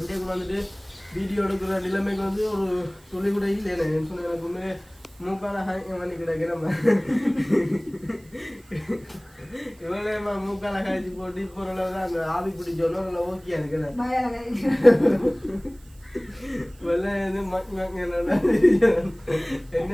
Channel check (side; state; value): right; noise; hiss, 28 dB below the sound